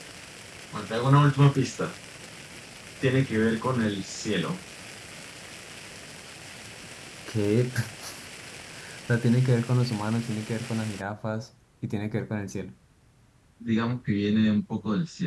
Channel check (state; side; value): identical; both; correlation 1.00